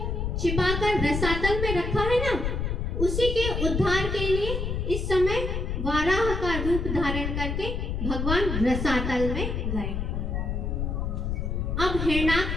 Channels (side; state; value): left; noise; rumble, 2 dB below the sound